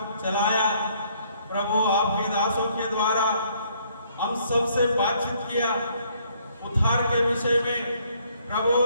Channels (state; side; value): inverted; both; correlation -0.65